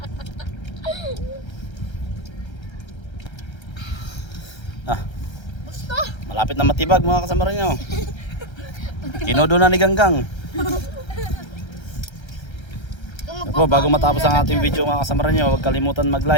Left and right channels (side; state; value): right; late; 1.3 ms